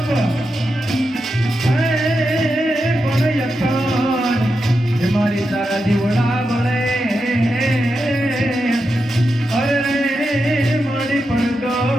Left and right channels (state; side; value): normal; both; correlation 0.87